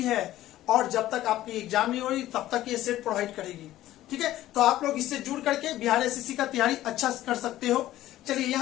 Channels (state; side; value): quieter; right; 14.4 dB